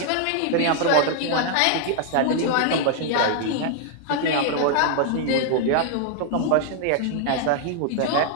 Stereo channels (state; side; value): different; both; correlation 0.00